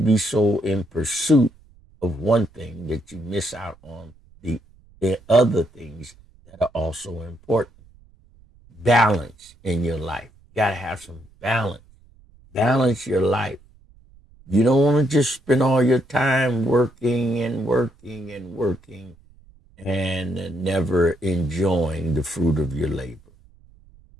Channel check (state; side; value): noise; right; rumble, 28 dB below the sound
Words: so in pursuit of one thing that you miss out on the other things that are also important. Balance in your life. You got to have some balance. Balance your life. You don't want to just spend all your time working and never enjoying the fruit of your labor.